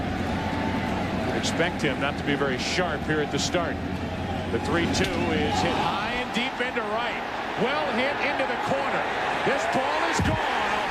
Expect him not to be very sharp here at the start. The 3-2 is hit high and deep into right. Well hit into the corner. This ball is gone. A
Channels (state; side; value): identical; both; correlation 1.00